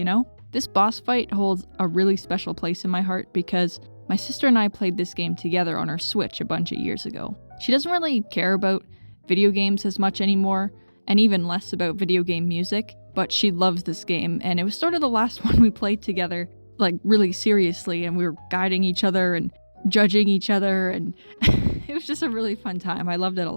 know? This boss fight holds a really special place in my heart because my sister and I played this game together on our Switch a bunch of years ago. She doesn't really care about video games as much anymore, and even less about video game music, but she loves this game, and it was sort of the last one we played together, like really seriously, and we were guiding each other and judging each other, and it was just a really fun time. I loved it a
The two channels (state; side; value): inverted; both; correlation -1.00